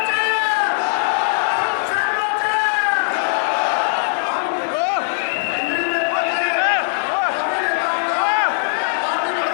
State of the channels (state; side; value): silent; right; digital silence